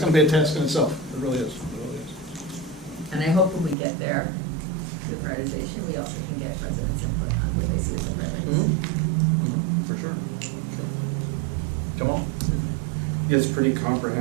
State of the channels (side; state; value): left; drops out; at 3.8 s